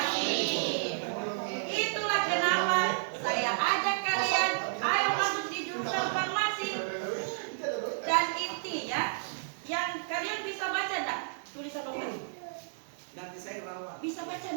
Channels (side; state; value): left; silent; digital silence